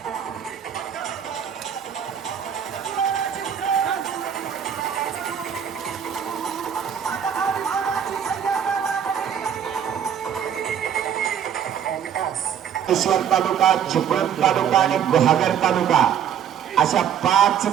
ईश्वर तालुका, चिपळूण तालुका आणि गुहागर तालुका अशा 5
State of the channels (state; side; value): quieter; left; 8.7 dB